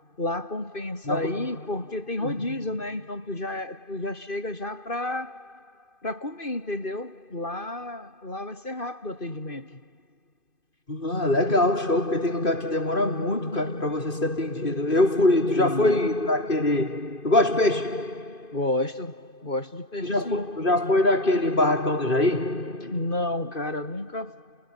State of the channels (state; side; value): late; right; 2.5 ms